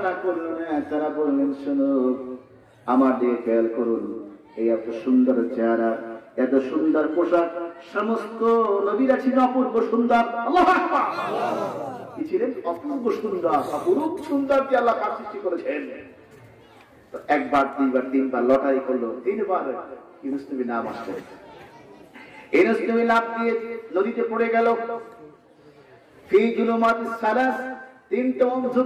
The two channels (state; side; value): identical; both; correlation 1.00